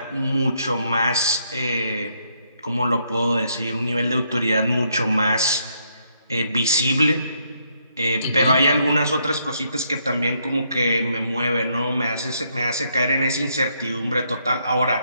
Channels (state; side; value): inverted; both; correlation -0.74